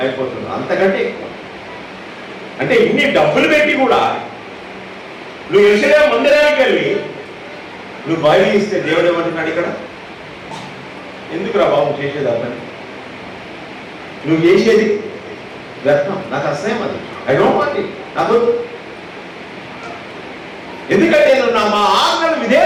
అయిపోతుంది, అంతకంటే ఎక్కువ. అంటే ఇన్ని డబ్బులు పెట్టి కూడా నువ్వు యెరూషలేము మందిరానికి వెళ్ళి నువ్వు బలి ఇస్తే దేవుడు ఏమంటున్నాడు ఇక్కడ? ఎందుకురా బాబు చేసేది అతని? నువ్వు చేసేది వ్యర్థం, నాకు అసహ్యం, అది ఐ డోంట్ వాంట్ ఇట్. నాకు ఎందుకంటే మా ఆజ్ఞలు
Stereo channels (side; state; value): both; identical; correlation 1.00